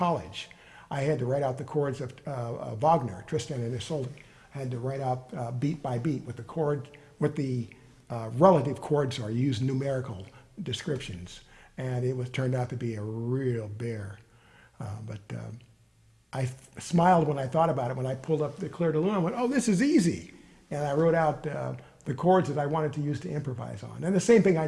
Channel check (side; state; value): both; identical; correlation 1.00